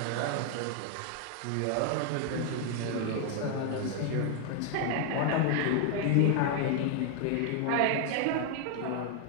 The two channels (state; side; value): different; both; correlation 0.00